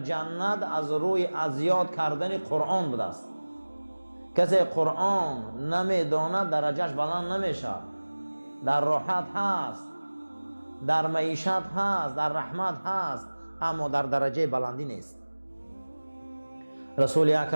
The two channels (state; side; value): inverted; both; correlation -1.00